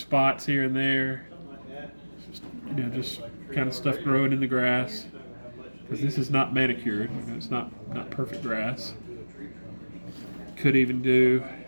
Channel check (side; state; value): both; inverted; correlation -1.00